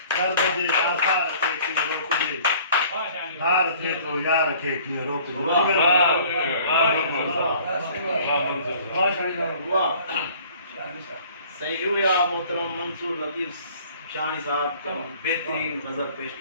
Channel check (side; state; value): both; inverted; correlation -0.52